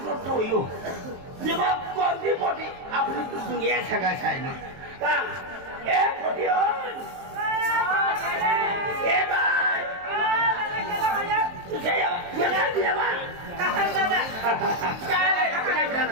मोठो येऊ जेव्हा कोणती पोटी आपली तुझून घ्या सगळ्या शाळेने एक पोटी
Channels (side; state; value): left; late; 23 ms